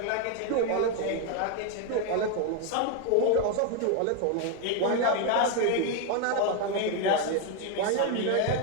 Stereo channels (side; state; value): both; different; correlation 0.01